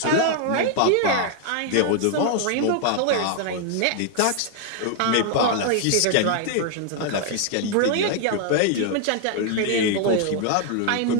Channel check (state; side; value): different; both; correlation 0.00